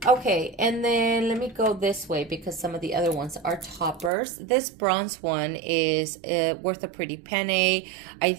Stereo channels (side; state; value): left; drops out; at 4.1 s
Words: Okay, and then let me go this way because some of the other ones are toppers. This bronze one is worth a pretty penny. I